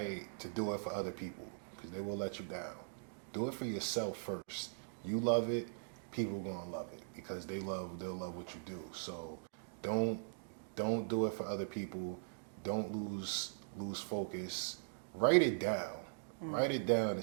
to do it for other people, because they will let you down. Do it for yourself first. You love it, people gonna love it, because they'll love what you do. So don't do it for other people. Don't lose focus. Write it down. Write it down.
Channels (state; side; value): silent; left; digital silence